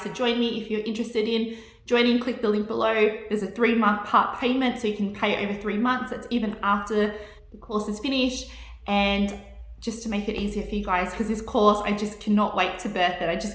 to join me. If you're interested in joining, click the link below. There's a 3-month part payment, so you can pay over 3 months. That's even after the course is finished. And just to make it easier for you guys, because this course, I just cannot wait to birth it. I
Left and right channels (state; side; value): identical; both; correlation 1.00